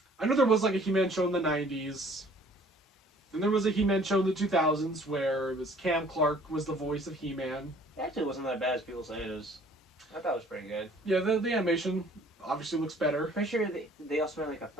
know there was like a He-Man show in the 90s, and there was a He-Man show in the 2000s where it was Cam Clark was the voice of He-Man. It actually wasn't that bad as people say it is. I thought it was pretty good. Yeah, the animation obviously looks better. Pretty sure they also made like a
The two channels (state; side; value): normal; both; correlation 0.55